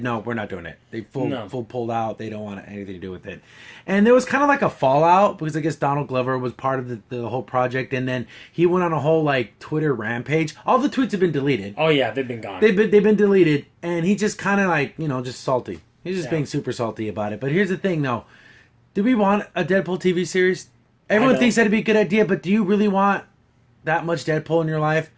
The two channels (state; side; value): identical; both; correlation 1.00